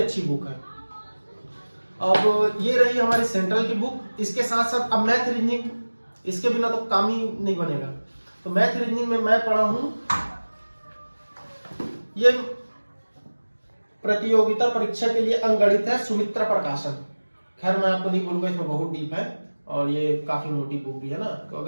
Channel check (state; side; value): inverted; both; correlation -1.00